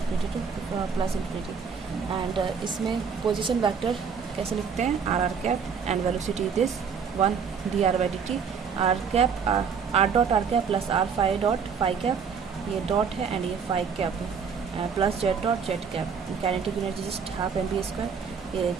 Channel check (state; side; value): quieter; left; 6.3 dB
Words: to plus infinity. And इसमें पोजीशन वेक्टर कैसे लिखते हैं, are cap and velocity this 1 D R by D T, R cap R dot are cap plus R phi dot phi cap, ये dot है and ये phi cap है, plus Z dot Z cap. Kinetic energy just half M B square, ये